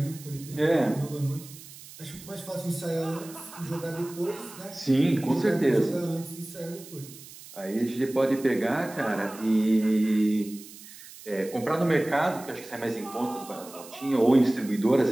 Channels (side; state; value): right; noise; hiss, 17 dB below the sound